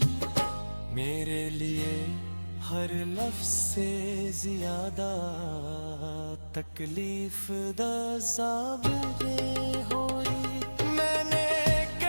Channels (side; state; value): both; inverted; correlation -1.00